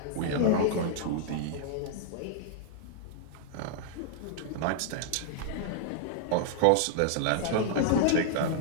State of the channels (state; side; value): different; both; correlation -0.01